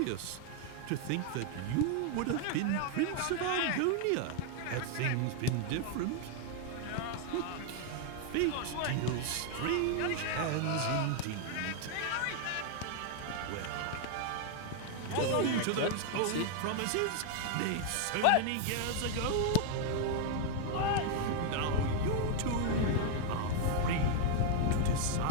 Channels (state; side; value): different; both; correlation 0.00